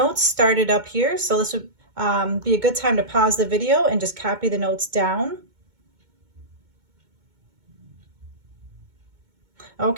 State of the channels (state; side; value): late; left; 2.2 ms